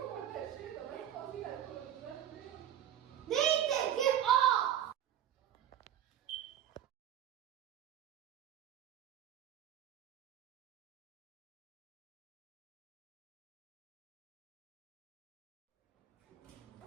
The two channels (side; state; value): left; quieter; 10.7 dB